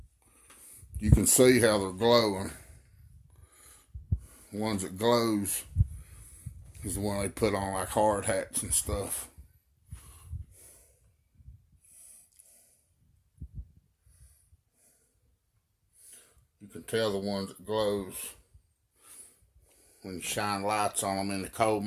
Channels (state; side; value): identical; both; correlation 1.00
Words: You can see how they're glowing. The ones that glows is the one they put on like hard hats and stuff. You can tell the ones that glows when you shine lights on them in the coal